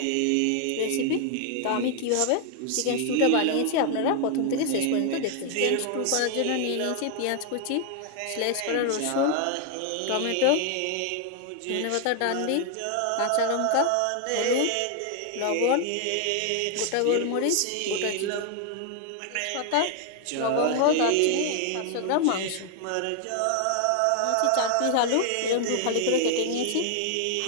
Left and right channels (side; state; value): both; different; correlation 0.00